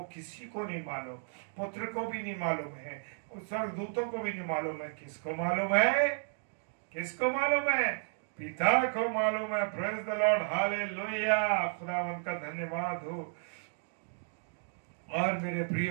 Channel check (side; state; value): left; silent; digital silence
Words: किसी को नहीं मालूम, पुत्र को भी नहीं मालूम है, उस स्वर्गदूतों को भी नहीं मालूम है। किसको मालूम है? किसको मालूम है? पिता को मालूम है। Praise the Lord. हालेलुया। खुदावन का धन्यवाद हो। और मेरे